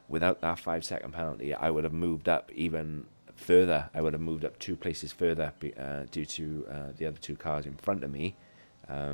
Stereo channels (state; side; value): inverted; both; correlation -1.00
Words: without that 5-second penalty, I would have moved up even further. I would have moved up 2 places further due to the other 2 cars in front of me